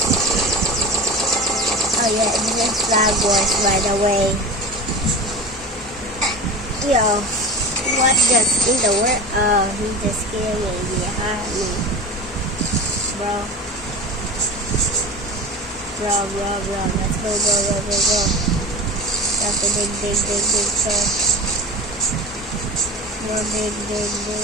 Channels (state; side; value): normal; both; correlation 0.31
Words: Oh yeah, this is Flag Wars by the way. Yo, what just in the world? Oh, he just killed me behind me. Bro. Let's go. That's a big turn. More big.